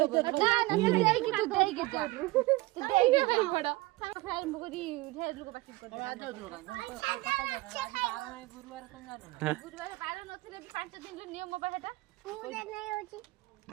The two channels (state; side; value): quieter; left; 20.6 dB